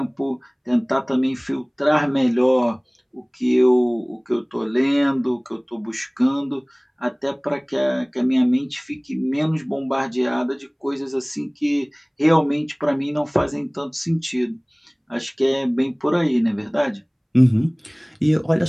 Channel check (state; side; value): identical; both; correlation 1.00